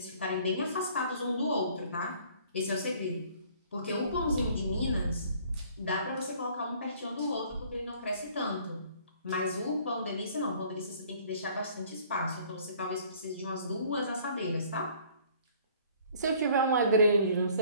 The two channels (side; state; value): both; inverted; correlation -0.56